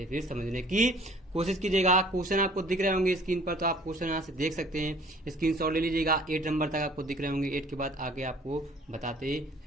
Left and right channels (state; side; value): normal; both; correlation 0.54